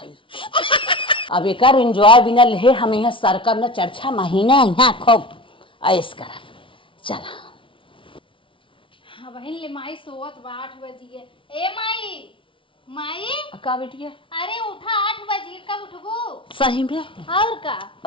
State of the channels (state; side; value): late; right; 0.25 ms